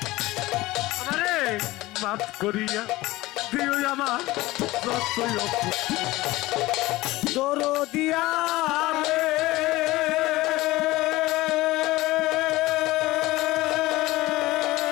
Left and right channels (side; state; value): right; quieter; 18.9 dB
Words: আমারে মাফ করিয়া দিও আমার যতই দরদিয়া রে